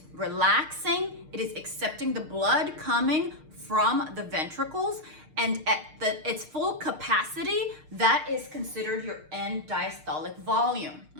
relaxing, it is accepting the blood coming from the ventricles, and at its full capacity, that is considered your end diastolic volume,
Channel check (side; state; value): left; late; 6.5 ms